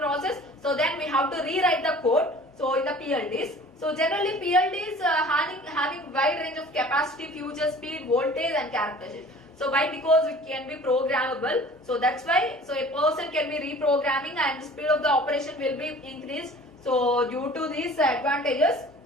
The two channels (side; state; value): both; normal; correlation 0.46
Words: So then we have to rewrite the code. So in the PLDs. So generally PLDs having wide range of capacity, future, speed, voltage and characteristics. So why? Because it can be programmable. So that's why. So a person can be reprogramming and the speed of the operation will be increased. So due to these advantages,